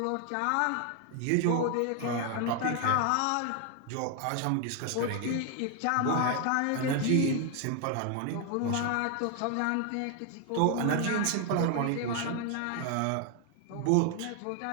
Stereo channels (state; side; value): different; both; correlation 0.01